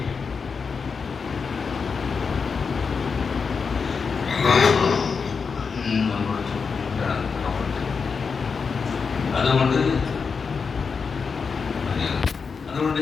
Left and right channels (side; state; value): right; quieter; 5.4 dB